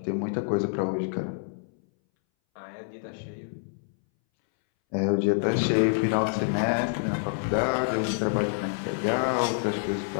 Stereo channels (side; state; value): right; silent; 60 dB below the other